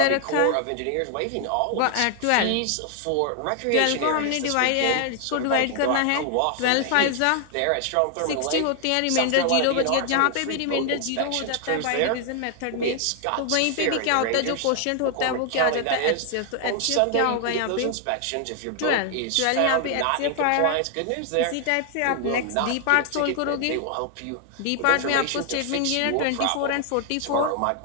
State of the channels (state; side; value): different; both; correlation 0.00